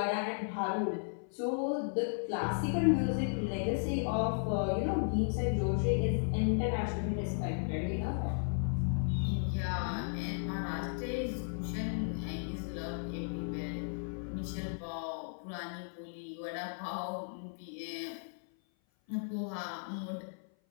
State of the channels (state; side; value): silent; right; 54 dB below the other